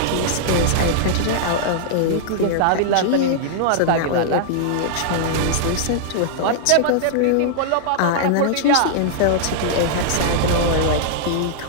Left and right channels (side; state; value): both; different; correlation -0.01